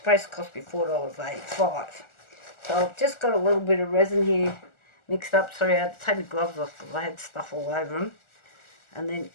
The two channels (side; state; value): right; late; 1.4 ms